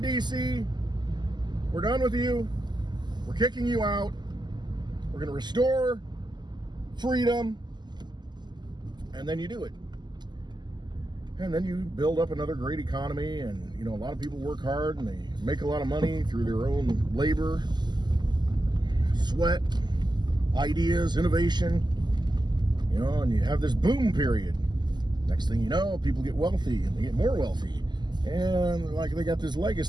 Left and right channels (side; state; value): left; late; 0.21 ms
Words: D.C., we're done with you. We're kicking you out. We're going to restore freedom. And then you do it. And then you build up another great economy. And, you know, a lot of people work hard and they make a lot of money through their own labor, sweat, ideas, innovation. You know, and you have this boom period. Next thing you know, people get wealthy and they get more wealthy. And like they got this